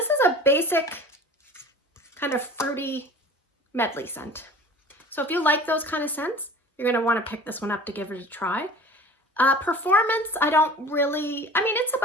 is a basic kind of fruity medley scent. So if you like those kind of scents, you're going to want to pick this one up to give it a try. Performance, I don't really, I mean, it's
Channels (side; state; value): both; normal; correlation 0.41